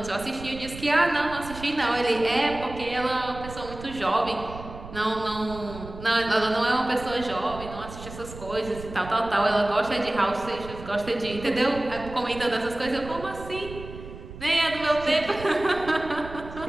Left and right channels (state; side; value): noise; right; rumble, 13 dB below the sound